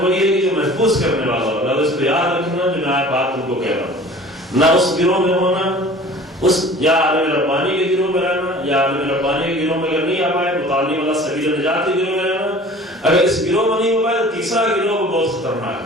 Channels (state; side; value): normal; both; correlation 0.45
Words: وہی ہے کہ جو محفوظ کرنے والا ہو، اس کو یاد رکھنا جو میں بات تم کو کہہ رہا ہوں. نہ اس گروہ میں ہونا، اس یا عالم ربانی کے گروہ میں رہنا، یا عالم ربانی کے گروہ میں اگر نہیں آ پائے متعلم والا سبیل نجات کے گروہ میں رہنا. اگر اس گروہ میں نہیں ہو پائے تو تیسرا گروہ بہت خطرناک